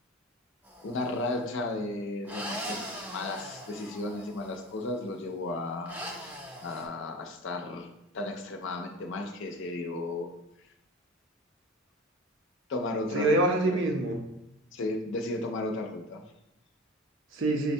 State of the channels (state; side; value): normal; both; correlation 0.35